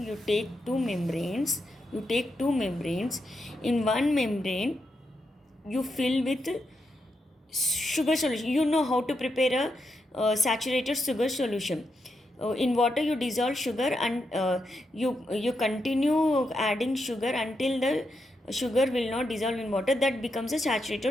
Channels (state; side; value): normal; both; correlation 0.83